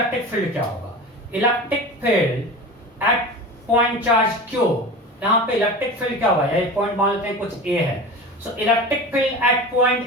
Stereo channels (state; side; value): normal; both; correlation 0.32